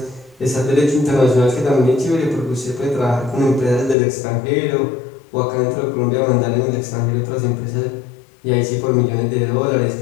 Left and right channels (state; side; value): drops out; right; at 4.0 s